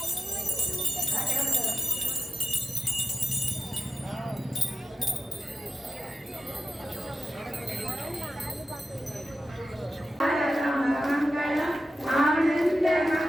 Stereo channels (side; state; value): both; normal; correlation 0.92